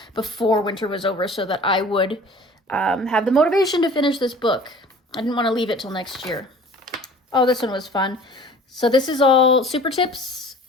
before winter was over so that I would have the motivation to finish this book. I didn't want to leave it till next year. Oh, this one was fun. So this is all super tips.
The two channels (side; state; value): both; normal; correlation 0.46